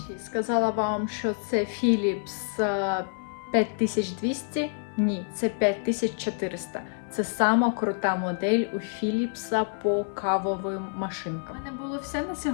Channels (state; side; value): silent; right; digital silence